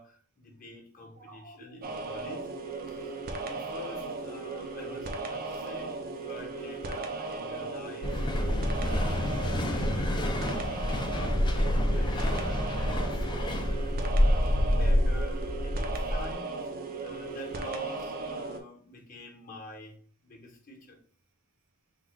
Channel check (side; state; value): both; normal; correlation 0.74